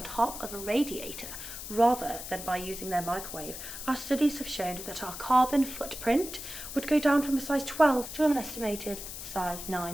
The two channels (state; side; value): noise; left; hiss, 9 dB below the sound